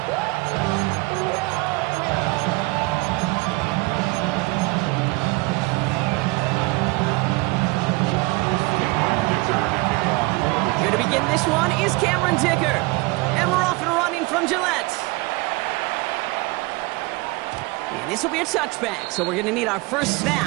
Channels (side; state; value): left; quieter; 24.4 dB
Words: This one is Cameron Dicker, and we're off and running from Gillette. And this will be a touchback, so we're going to need our first